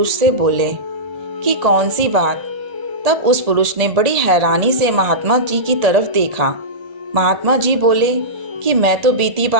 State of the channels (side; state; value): left; late; 1.8 ms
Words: से बोले कि कौन सी बात? तब उस पुरुष ने बड़ी हैरानी से महात्मा जी की तरफ देखा। महात्मा जी बोले कि मैं तो बीती